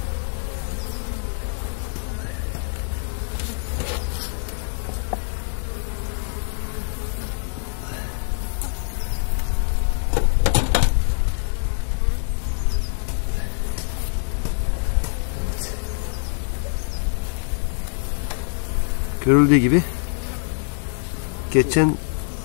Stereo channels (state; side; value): silent; right; digital silence